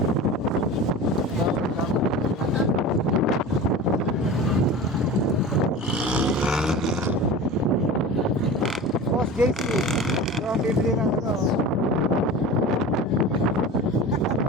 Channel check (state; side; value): normal; both; correlation 0.34